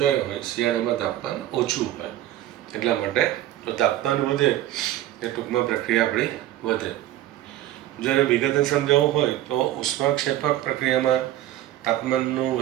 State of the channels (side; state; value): left; quieter; 13.6 dB